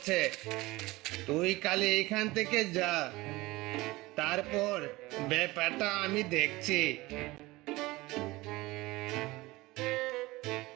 তুই কালে এখান থেকে যা, তারপর ব্যাপারটা আমি দেখছি।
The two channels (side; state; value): left; quieter; 20.4 dB